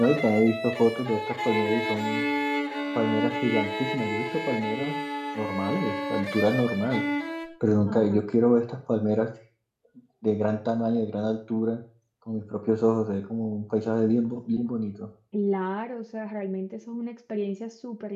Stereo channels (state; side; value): identical; both; correlation 1.00